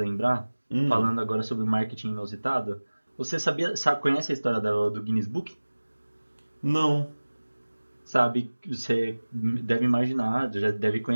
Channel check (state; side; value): inverted; both; correlation -1.00